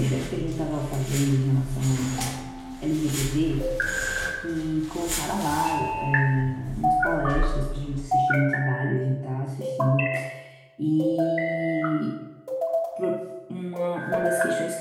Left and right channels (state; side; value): identical; both; correlation 1.00